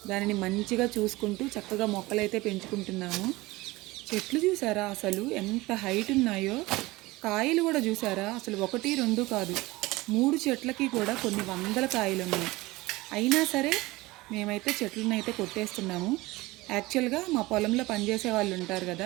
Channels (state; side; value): quieter; left; 20.6 dB